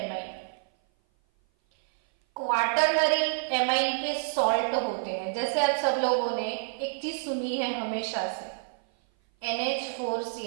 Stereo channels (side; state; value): left; silent; 56 dB below the other